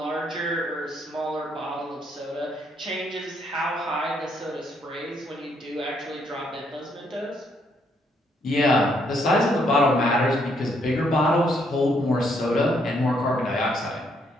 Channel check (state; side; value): normal; both; correlation 0.72